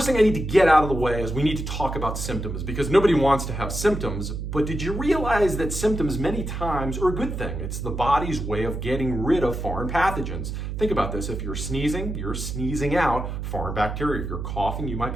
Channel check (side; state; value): right; noise; hum, 5 dB below the sound